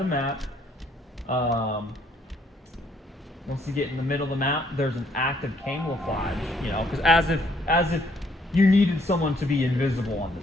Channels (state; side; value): normal; both; correlation 0.67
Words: map. Once you get in the middle of the map, there's an active camouflage, you know, because as if you needed someone to be invisible on